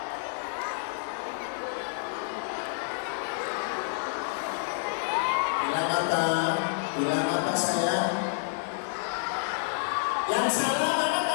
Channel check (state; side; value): silent; right; digital silence